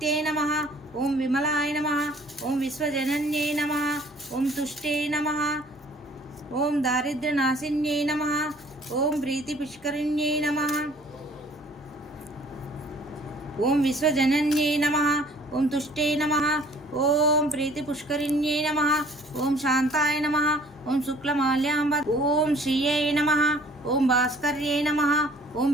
నమః. ఓం విమలాయ నమః. ఓం విశ్వజనన్యే నమః. ఓం తుష్టే నమః. ఓం దారిద్ర్యనాశిన్యే నమః. ఓం ప్రీతిపుష్కరిణ్యే నమః. ఓం విశ్వజనన్యే నమః. ఓం తుష్టే నమః. ఓం ప్రీతిపుష్కరిణ్యే నమః. ఓం శాంతాయ నమః. ఓం శుక్లమాల్యాంబ. ఓం శ్రీయై నమః. ఓం భాస్కర్యే నమః. ఓం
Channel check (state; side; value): normal; both; correlation 0.55